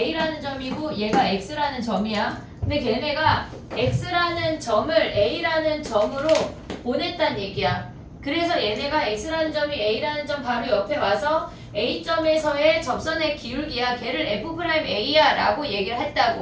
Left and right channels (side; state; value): both; identical; correlation 1.00